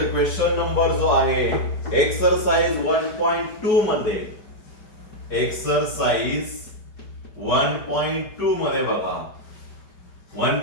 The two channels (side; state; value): right; late; 4.9 ms